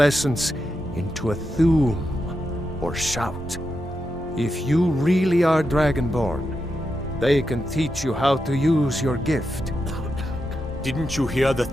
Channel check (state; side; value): normal; both; correlation 0.86